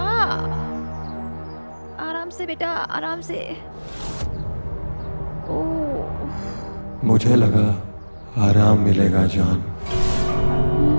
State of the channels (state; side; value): inverted; both; correlation -1.00